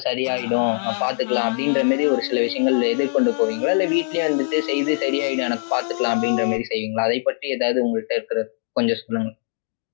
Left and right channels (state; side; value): silent; right; 64 dB below the other